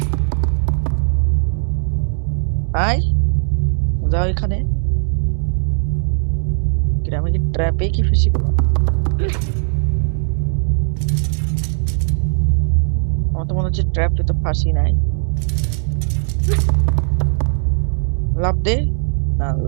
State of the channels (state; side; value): silent; left; 65 dB below the other